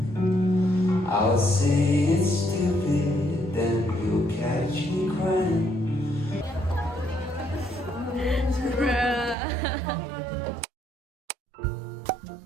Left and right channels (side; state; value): left; drops out; at 9.3 s